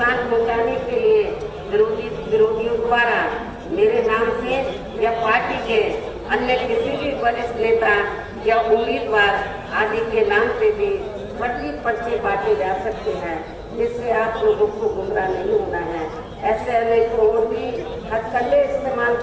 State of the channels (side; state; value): both; identical; correlation 1.00